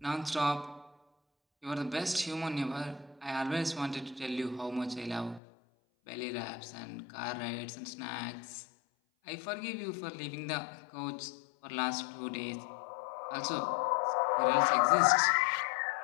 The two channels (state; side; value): drops out; right; at 5.4 s